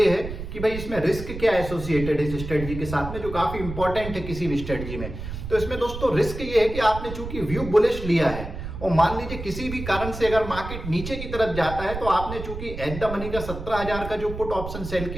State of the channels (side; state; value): right; noise; rumble, 8 dB below the sound